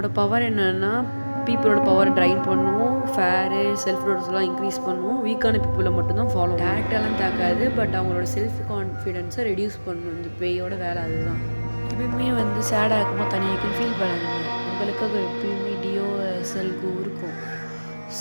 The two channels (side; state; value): both; inverted; correlation -1.00